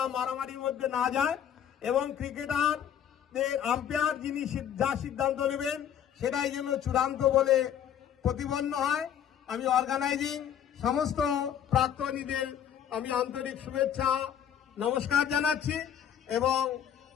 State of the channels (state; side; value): quieter; right; 9.3 dB